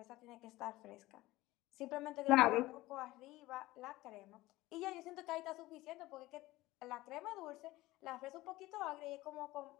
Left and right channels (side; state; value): right; quieter; 18.3 dB